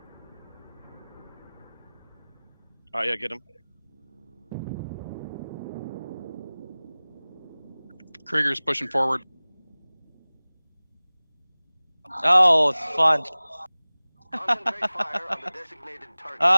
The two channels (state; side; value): inverted; both; correlation -0.99